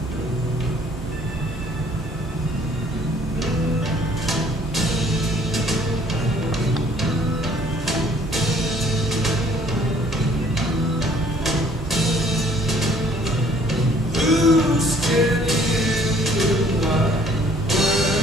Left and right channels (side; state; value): both; normal; correlation 0.59